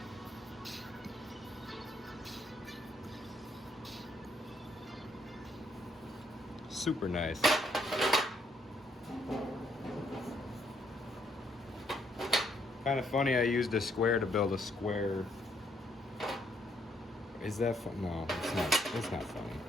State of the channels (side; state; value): both; normal; correlation 0.72